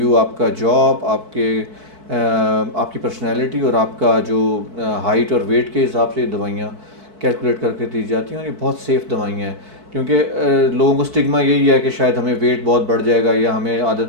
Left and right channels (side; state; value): left; late; 4.6 ms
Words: آپ کا جاب, آپ کی پرسنالٹی اور آپ کا جو ہائٹ اور ویٹ کے حساب سے دوائیاں کیلکولیٹ کر کے دی جاتی ہیں, اور یہ بہت سیف دوائیاں ہیں. کیونکہ لوگوں کو اسٹگما یہی ہے کہ شاید ہمیں ویٹ بہت بڑھ جائے گا یا ہمیں